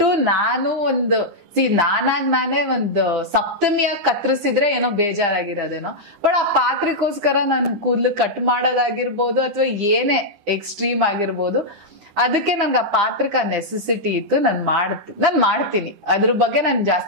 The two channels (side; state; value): left; late; 9.9 ms